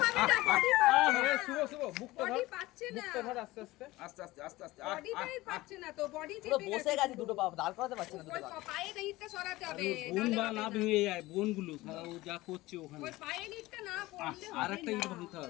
পাচ্ছে না শুভ শুভ মুক্ত ধর, বডি পাচ্ছে না মুক্ত ধর আস্তে আস্তে। আস্তে আস্তে আস্তে আস্তে বডিটাই পাচ্ছে না তো বডি পুরো চেপে বসে গেছে দুটো পা দাঁড় করাতে পারছে না দুটো ওই পা। পায়ে ইটটা সরাতে হবে বোন বা না ভেঙে যায়, বোনগুলো সারা ও যা করছে ওখানে। ওই পায়ের ইটটা না পড়লে আর হবে একটা না। ইট ভাঙতে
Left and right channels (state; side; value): quieter; right; 19.0 dB